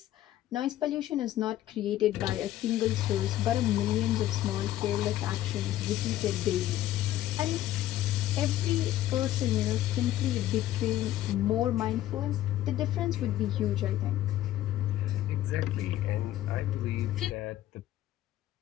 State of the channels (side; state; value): right; quieter; 13.7 dB